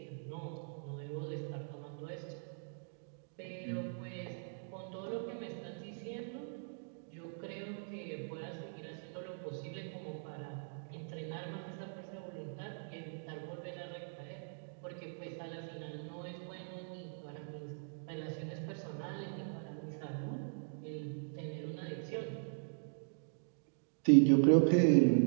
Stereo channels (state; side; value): silent; left; digital silence